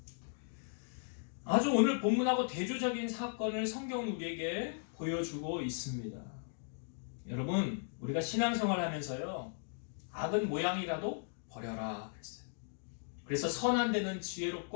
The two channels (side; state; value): right; silent; digital silence